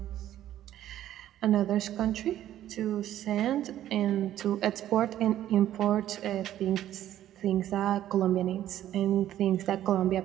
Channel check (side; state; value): left; quieter; 12.3 dB